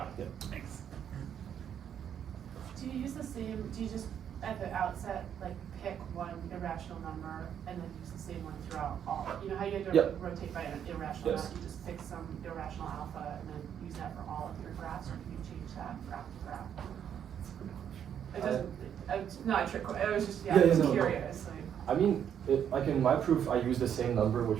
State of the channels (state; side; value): quieter; left; 8.9 dB